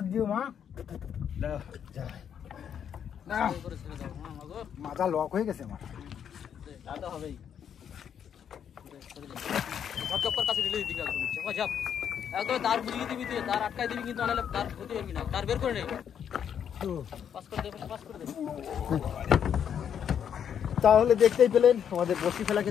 দিও মা। জয়। মাথা লক হয়ে গেছে আমার। তা হবেই। একদম তার বুঝিয়ে দিবি, তুই তার আটকাই দিবি, কিন্তু আনালে তার ক্ষতি করবি না। তার বের করে নেই, পাস করে দে, পাস করে দে। তাহলে দেখতেই পেলেন আমাদের বসি ফেলা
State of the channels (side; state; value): right; quieter; 8.5 dB